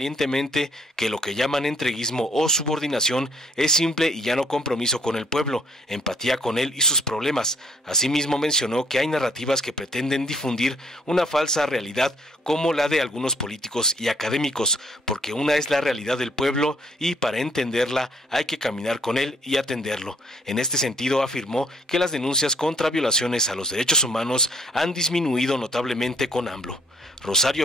que lo que llaman entreguismo o subordinación es simple y llano compromiso con el pueblo, empatía con él y sus problemas. Asimismo mencionó que hay narrativas que pretenden difundir una falsa realidad como la de algunos políticos y académicos, porque una es la realidad del pueblo y para entenderla hay que caminar con él y atenderlo. En este sentido afirmó que las denuncias contra violaciones a los derechos humanos han disminuido notablemente con AMLO.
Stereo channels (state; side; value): normal; both; correlation 0.64